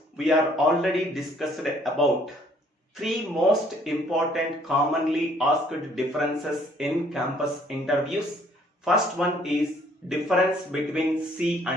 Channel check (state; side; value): normal; both; correlation 0.61